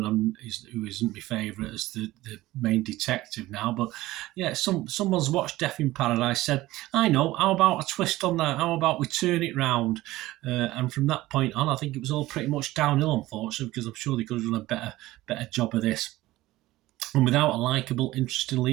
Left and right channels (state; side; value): quieter; left; 17.4 dB